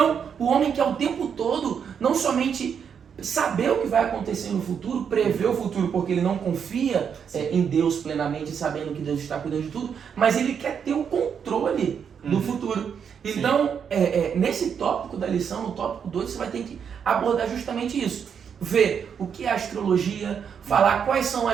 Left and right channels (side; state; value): left; quieter; 7.3 dB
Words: o homem quer o tempo todo, não somente saber o que vai acontecer no futuro, prever o futuro, porque ele não confia em Deus plenamente, sabendo que Deus está cuidando de tudo, mas ele quer ter o controle do futuro. Então, nesse tópico da lição, no tópico 2, você vai ter que abordar justamente isso. Ver o que é astrologia, falar quais são